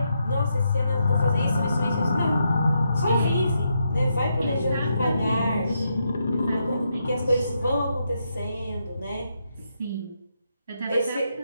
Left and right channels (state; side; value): inverted; both; correlation -0.81